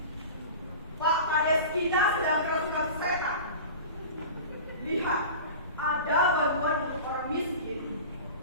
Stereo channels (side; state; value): both; inverted; correlation -0.35